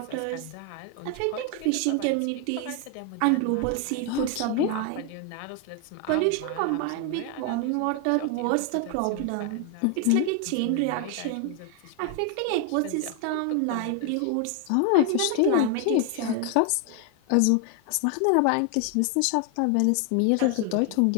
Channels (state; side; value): different; both; correlation 0.00